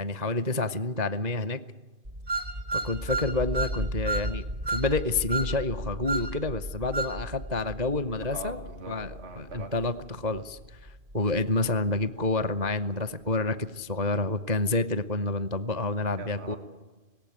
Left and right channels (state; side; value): late; left; 2.5 ms